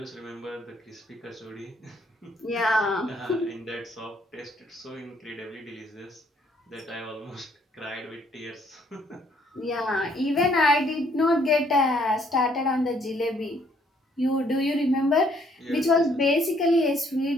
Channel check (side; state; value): both; normal; correlation 0.66